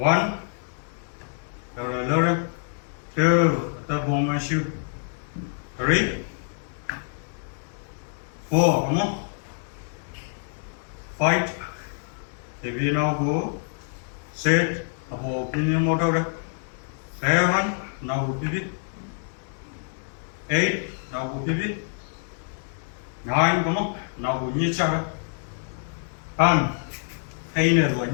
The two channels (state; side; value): silent; right; digital silence